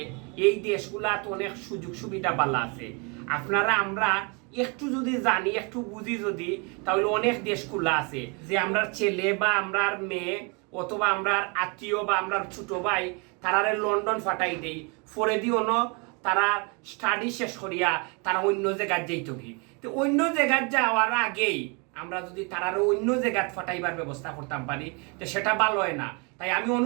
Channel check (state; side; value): quieter; left; 32.3 dB